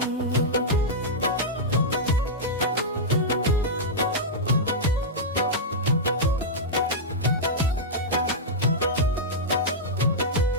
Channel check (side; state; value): both; normal; correlation -0.08